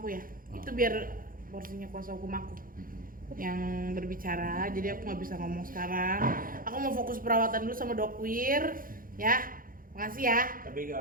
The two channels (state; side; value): late; left; 0.41 ms